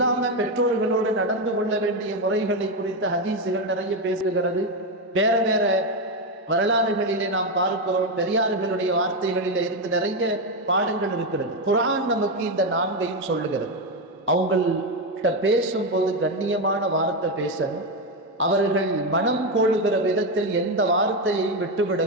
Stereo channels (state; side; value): normal; both; correlation 0.09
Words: பெற்றோர்களோடு நடந்து கொள்ள வேண்டிய முறைகளை குறித்த ஹதீசுகள் நிறைய பேசுகிறது. வேற வேற வரலாறுகளிலே நாம் பார்க்கிறோம். பெரியார்களுடைய வார்த்தைகளில இருந்து நிறைய பாடங்கள் இருக்கிறது. குர்ஆன் நமக்கு இந்த 4ஐயும் சொல்லுகிறது. அவங்கள்ட்ட பேசும்போது கண்ணியமான வார்த்தை பேசணும். அவர்கள் மனம் கோளுகிற விதத்தில் எந்த வார்த்தையையும்